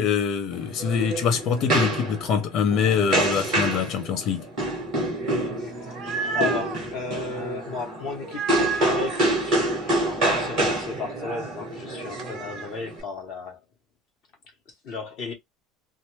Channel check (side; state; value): both; normal; correlation 0.41